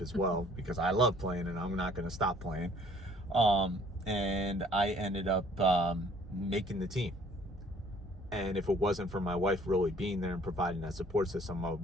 as well, because I love playing and I'm not going to stop playing. And I ended up making the team. And if it wasn't for my wife really being there and providing that support system, I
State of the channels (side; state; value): both; normal; correlation 0.57